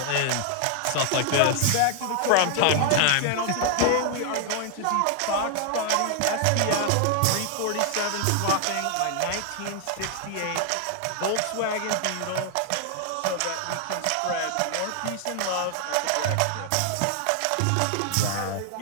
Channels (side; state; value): both; different; correlation 0.00